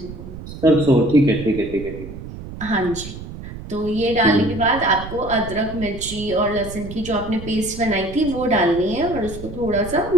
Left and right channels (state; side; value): noise; right; rumble, 11 dB below the sound